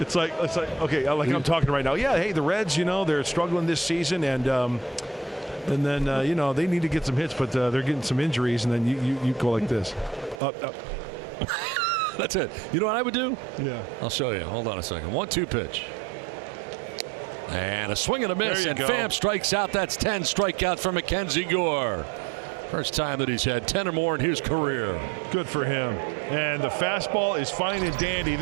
like okay, like I'm talking right now. Yeah, hey, the Reds, they're struggling this season, and then they need to get some hits, but they're getting some injuries, and then you go like this. Up. That's it. You know what I would do? Yeah. I'll show you. Hold on a second. 1-2 pitch. And a swing and a miss, and Pham strikes out. That's 10 strikeouts for Mackenzie Gore. First time that he's had 10 or more in his career. Good for him. And the fastball is fine and dandy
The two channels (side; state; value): left; drops out; at 10.4 s